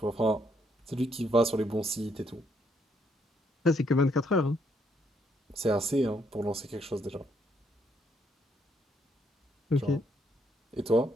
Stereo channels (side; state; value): both; normal; correlation 0.72